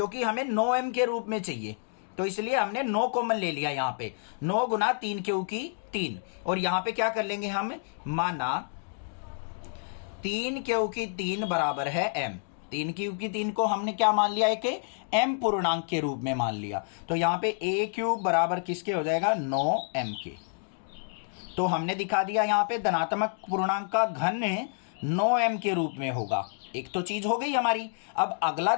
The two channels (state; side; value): silent; right; digital silence